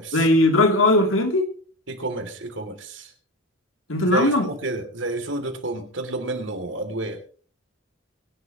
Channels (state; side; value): normal; both; correlation 0.22